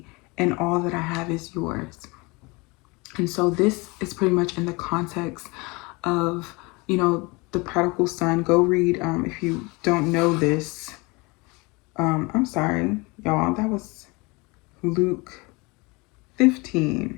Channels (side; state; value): right; quieter; 26.4 dB